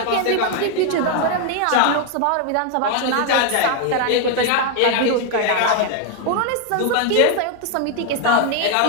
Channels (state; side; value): different; both; correlation 0.00